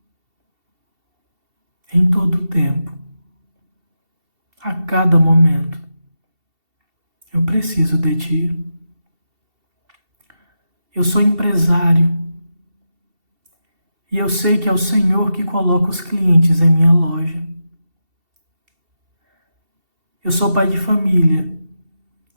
Em todo o tempo, a cada momento, eu preciso de ti. Eu sou empresário e eu sei que é o Senhor que coloca os clientes em minha loja. Eu sou pai de família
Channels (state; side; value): late; left; 2.7 ms